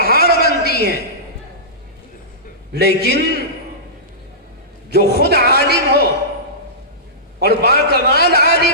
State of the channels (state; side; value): normal; both; correlation -0.19